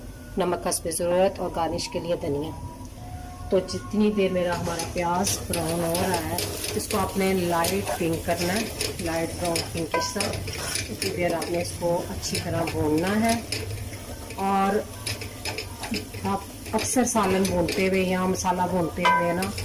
नमक हस्बे ज़रूरत और गार्निश के लिए धनिया। तो जितनी देर मेरा हमारा प्याज ब्राउन हो रहा है, इसको आपने लाइट पिंक करना है, लाइट ब्राउन पिंक इस तरह। उतनी देर आपने इसको अच्छी तरह भूनना है। और आप अक्सर सालन भूनते हुए या मसाला भूनते हुए ना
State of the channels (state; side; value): identical; both; correlation 1.00